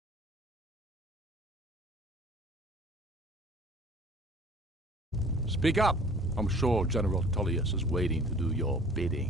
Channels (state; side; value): normal; both; correlation 0.50